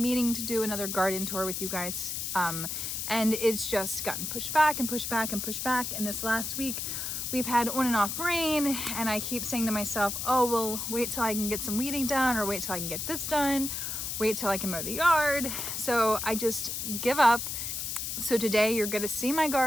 meaning to do another garden tour with you guys. And it's just gotten pushed back and pushed back and pushed back. And this last week we've had on and off rain and I keep saying to myself, oh, well, wait till I can get some weeding done, or wait till I can get this done, wait till I can mow the yard. So I just give up. So today you're going to see my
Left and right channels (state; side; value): noise; left; hiss, 3 dB below the sound